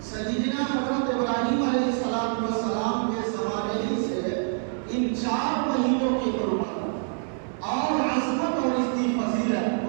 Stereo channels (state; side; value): silent; left; 59 dB below the other